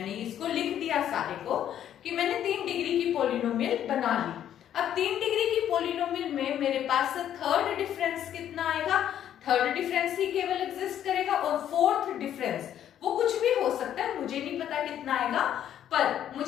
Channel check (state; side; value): quieter; right; 10.5 dB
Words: इसको लिख दिया सारे को कि मैंने 3 डिग्री की पॉलिनोमियल बना ली। अब 3 डिग्री की पॉलिनोमियल में मेरे पास थर्ड डिफरेंस कितना आएगा? थर्ड डिफरेंस ही केवल एग्जिस्ट करेगा, और फोर्थ डिफरेंस वो कुछ भी हो सकता है, मुझे नहीं पता कितना आएगा, पर